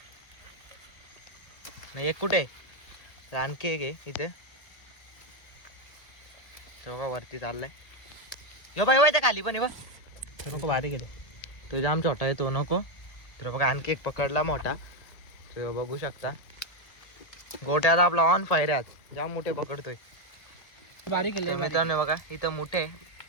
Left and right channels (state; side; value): late; right; 1.8 ms